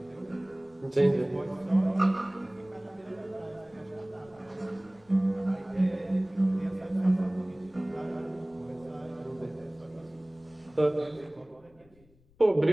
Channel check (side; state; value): left; noise; rumble, 29 dB below the sound